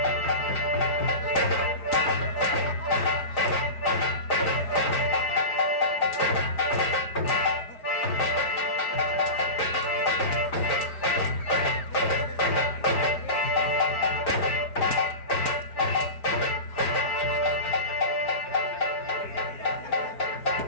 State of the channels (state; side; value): late; right; 4.9 ms